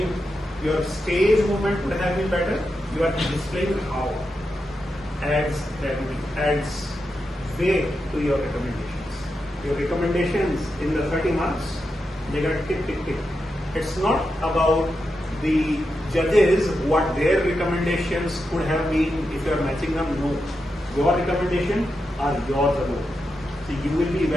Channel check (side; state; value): both; normal; correlation 0.87